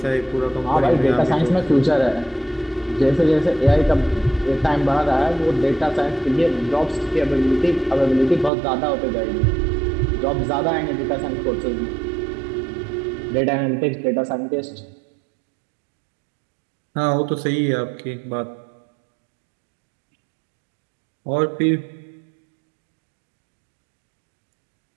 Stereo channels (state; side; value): drops out; left; at 8.5 s